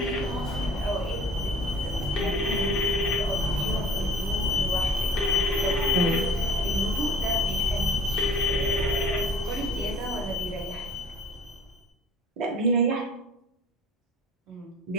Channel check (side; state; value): both; normal; correlation 0.48